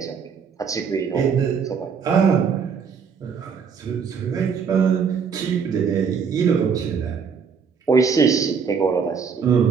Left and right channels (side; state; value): left; quieter; 6.3 dB